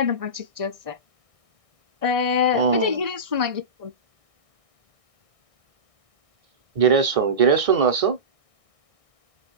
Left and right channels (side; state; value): left; late; 1.6 ms